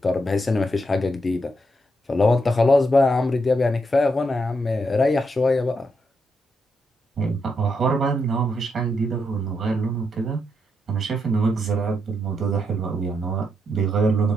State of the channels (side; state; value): both; normal; correlation 0.80